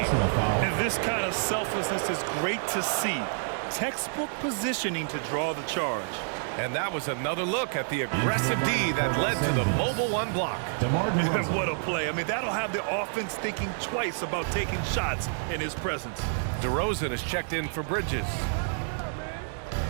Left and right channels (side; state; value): left; silent; digital silence